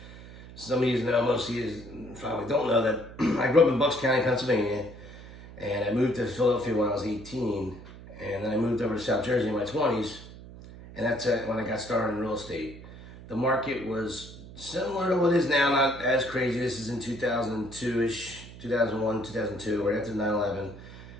Some of you know, most of you probably don't know that I grew up in Bucks County, Pennsylvania. And I moved to Philadelphia when I was 18, and then I moved over to South Jersey in my 20s, and that's when I got started in real estate. The market was similar to what it is now, not as crazy. This is in 2002-ish, 2001, 2002, right after 9/11.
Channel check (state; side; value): noise; right; hum, 16 dB below the sound